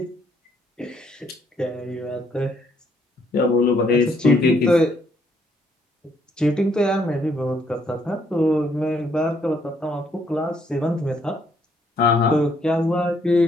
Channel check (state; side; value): normal; both; correlation 0.70